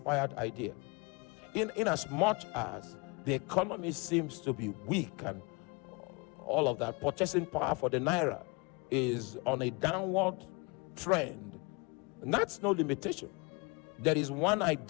idea. In as much as the economy seems to be weak and all of that, purchasing power for the naira is on a downward trend, and that's no limitation. There is one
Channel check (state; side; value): quieter; right; 29.5 dB